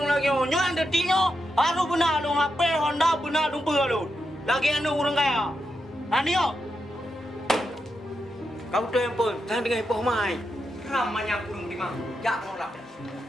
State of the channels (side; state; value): both; normal; correlation 0.85